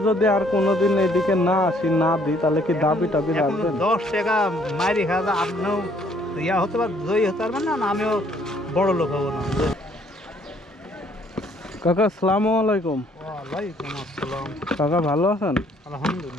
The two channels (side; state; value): both; normal; correlation 0.63